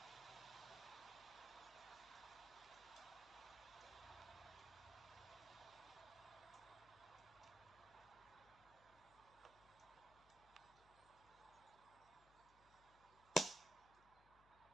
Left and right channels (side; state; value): left; noise; hum, 20 dB below the sound